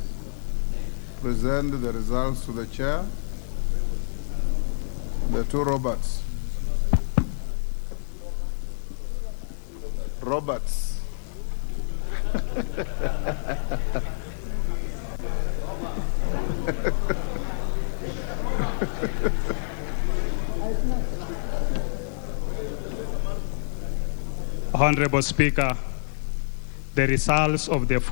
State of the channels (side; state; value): right; silent; digital silence